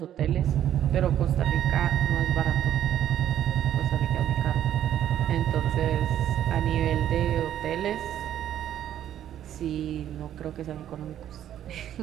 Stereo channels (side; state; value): left; quieter; 11.0 dB